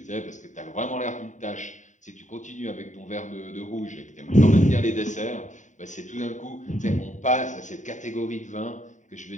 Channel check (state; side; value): late; right; 0.36 ms